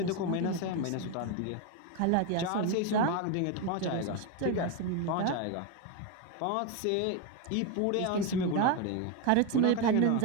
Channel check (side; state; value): both; different; correlation 0.02